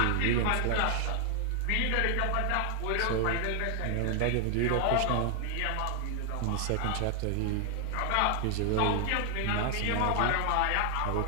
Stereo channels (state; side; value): different; both; correlation 0.00